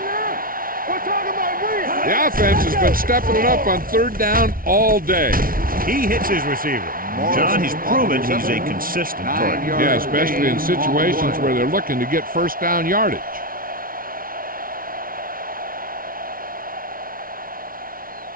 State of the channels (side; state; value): left; late; 0.42 ms